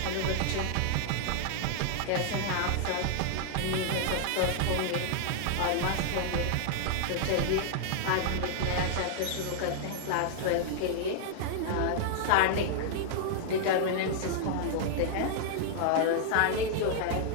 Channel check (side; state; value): both; different; correlation 0.00